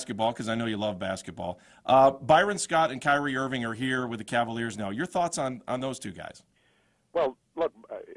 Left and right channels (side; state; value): both; identical; correlation 1.00